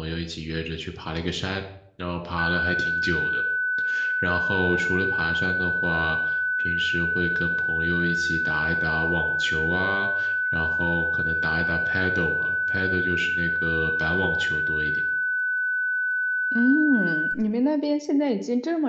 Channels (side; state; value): both; identical; correlation 1.00